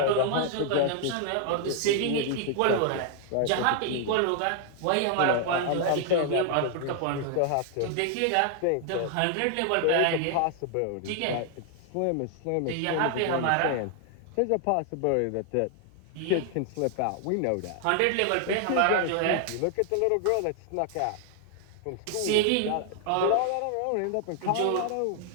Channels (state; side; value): different; both; correlation 0.00